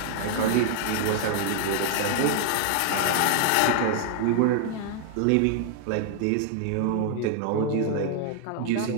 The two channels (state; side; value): different; both; correlation 0.00